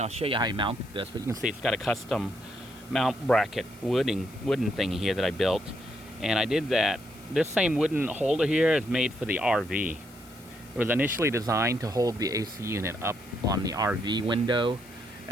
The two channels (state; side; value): noise; left; hiss, 24 dB below the sound